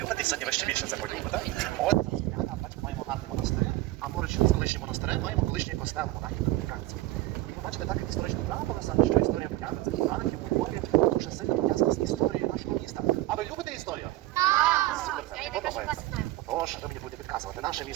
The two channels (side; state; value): left; quieter; 17.2 dB